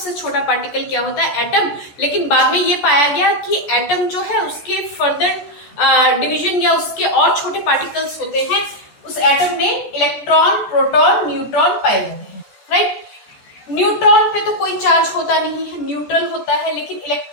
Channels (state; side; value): late; right; 14 ms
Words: छोटा पार्टिकल क्या होता है? एटम। लेकिन बाद में ये पाया गया कि एटम जो है उसके फर्दर डिवीजन या उसके और छोटे पार्टिकल्स होते हैं। उस एटम में इलेक्ट्रॉन, प्रोटॉन, न्यूट्रॉन पाए जाते हैं, राइट। न्यूट्रॉन पे तो कोई चार्ज होता नहीं है, न्यूट्रल होता है, लेकिन